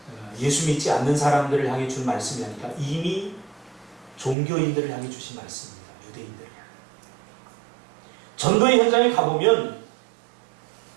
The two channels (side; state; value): left; drops out; at 4.4 s